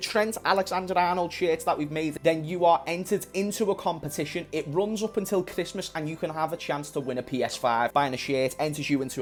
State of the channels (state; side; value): identical; both; correlation 1.00